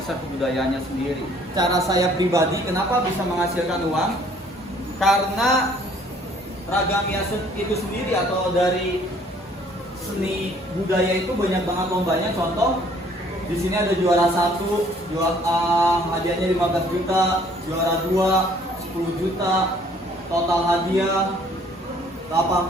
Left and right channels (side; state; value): both; normal; correlation 0.59